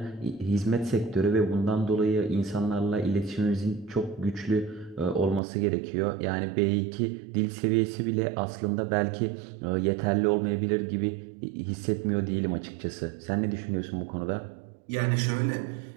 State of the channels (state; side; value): drops out; left; at 5.4 s